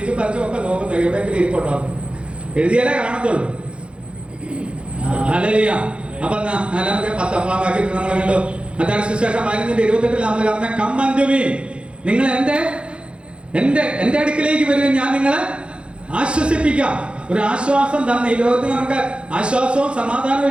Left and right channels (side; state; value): left; late; 0.057 ms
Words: പറിച്ചും ഒക്കെ നോക്കുന്നത് എവിടെയെങ്കിലും ഇരിപ്പുണ്ടോ? എഴുതിയാലേ കാണത്തുള്ളൂ. ഹല്ലേലൂയ. അപ്പൊ 4-ാം വാക്യത്തിൽ നമ്മൾ കണ്ടു. മത്തായി സുവിശേഷം 15:28 നമ്മൾ പറഞ്ഞ കം അൻടു മീ, നിങ്ങൾ എന്റെ അടുക്കിലേക്ക് വരികയും ഞാൻ നിങ്ങളെ ആശ്വസിപ്പിക്കാം. ഒരു ആശ്വാസം തന്നെ. ഈ ലോകത്തിൽ നമുക്ക് ആശ്വാസവും സമാധാനവും